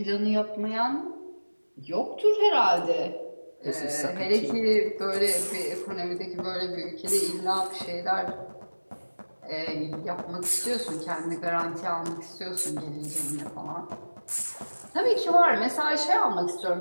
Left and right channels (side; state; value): both; inverted; correlation -1.00